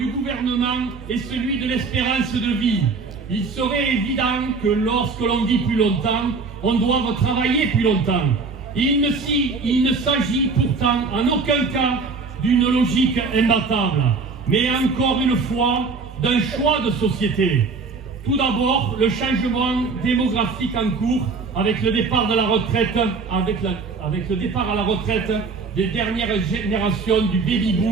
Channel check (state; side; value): quieter; left; 4.4 dB